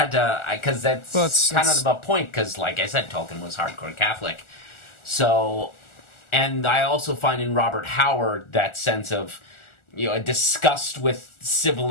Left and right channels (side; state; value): right; late; 1.4 ms